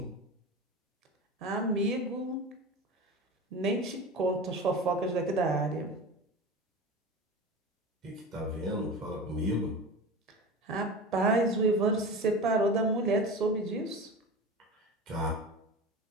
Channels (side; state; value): both; normal; correlation 0.30